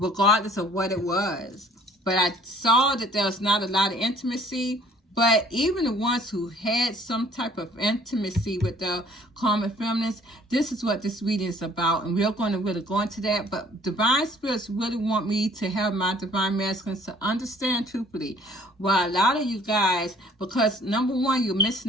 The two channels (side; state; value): both; normal; correlation 0.56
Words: of what it was. But I saw that there was not a lot of intimacy. But even the ones who had some type of intimacy with the karmic feminines, this is what this reading is about. And we're going to really go into that. But divine spirits really want me to have my divine masculines to understand truthfully why a lot of you guys, because number one, you're